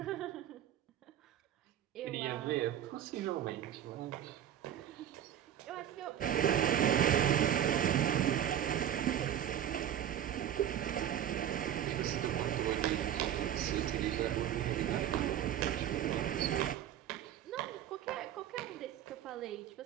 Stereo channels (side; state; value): left; quieter; 10.6 dB